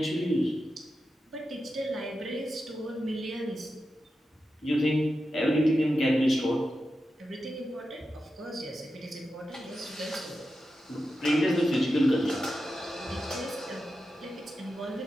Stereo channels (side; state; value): both; normal; correlation 0.90